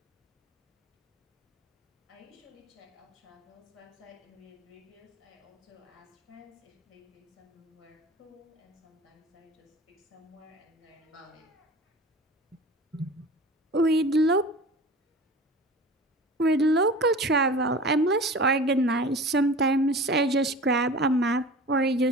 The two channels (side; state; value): both; normal; correlation 0.38